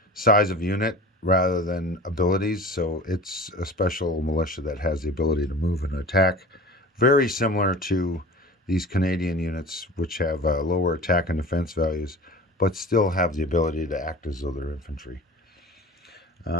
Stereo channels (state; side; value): normal; both; correlation 0.38